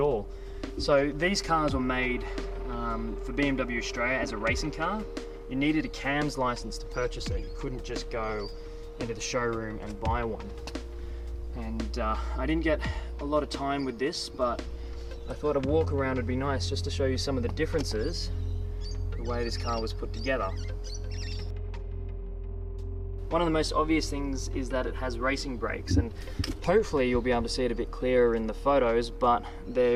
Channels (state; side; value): identical; both; correlation 1.00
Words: all. So these cars were made for BMW Australia as a racing car. You needed a CAMS license to purchase it. You couldn't just go into the showroom and buy one. And I didn't get a lot of time with this, but I thought a walk around would be nice just to show you some of the differences, the way this car was put together. One of the most obvious things is that it has racing brakes, and hopefully you'll be able to see it a bit clearer in the photos, but